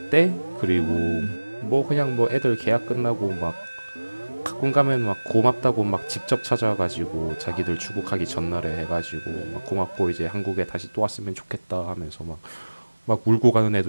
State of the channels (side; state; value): both; inverted; correlation -1.00